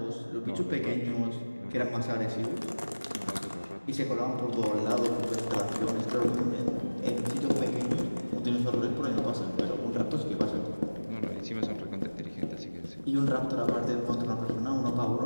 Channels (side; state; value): both; inverted; correlation -1.00